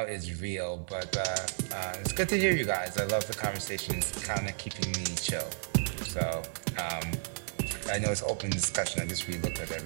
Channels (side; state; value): left; silent; digital silence